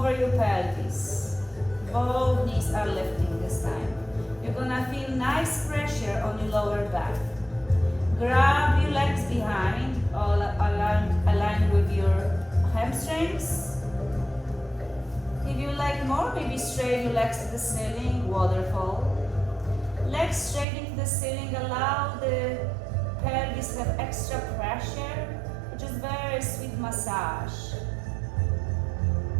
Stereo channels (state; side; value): drops out; left; at 20.7 s